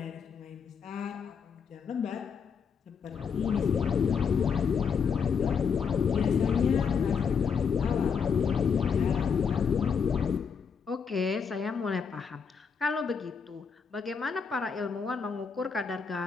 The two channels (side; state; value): right; quieter; 6.2 dB